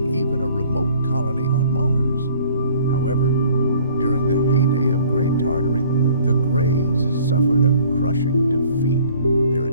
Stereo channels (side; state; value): both; inverted; correlation -0.55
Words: even a remote colony on Mars. However, during the heyday of Great Tartary, the Greys suffered a crushing defeat. Their